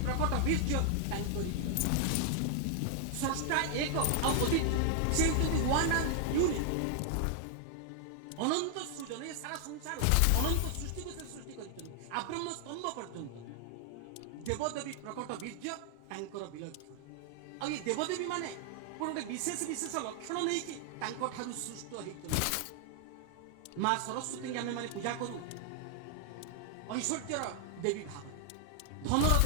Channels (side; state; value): both; different; correlation 0.00